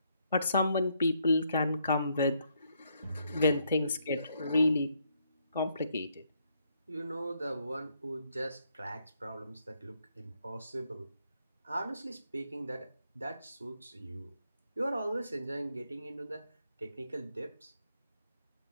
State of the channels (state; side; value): inverted; both; correlation -0.74